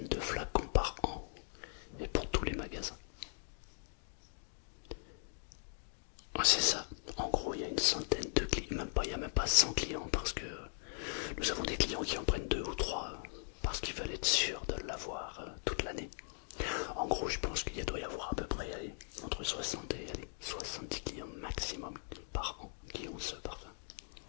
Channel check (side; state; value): right; silent; digital silence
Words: de flacons par an. Et pour tous les magasins. C'est ça. En gros, il y a une centaine de clients. Même pas, il n'y a même pas 100 clients parce que nous avons des clients qui en prennent 2 ou 3 parce qu'ils veulent être sûrs de l'avoir toute l'année. En gros, je pense qu'il doit y avoir à peu près entre 60 et 70 clients maximum par an qui ont ce parfum.